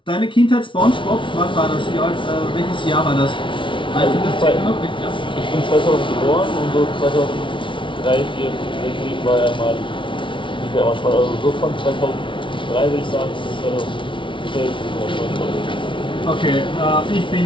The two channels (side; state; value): right; late; 0.25 ms